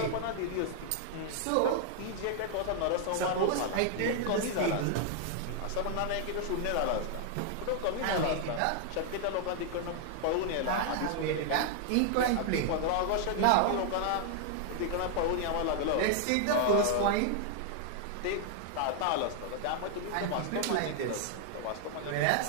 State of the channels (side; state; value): both; different; correlation 0.00